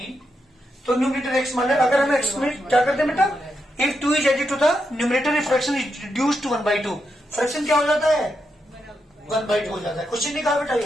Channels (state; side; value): normal; both; correlation 0.84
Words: तो न्यूमरेटर एक्स मान ले, अगर हम एक्स में क्या करते हैं बेटा, if 2 is added to the numerator fraction is reduced to 1/2, fraction क्या हो जाता है? 1/2 हो जाता है। क्वेश्चन ने कहा बेटा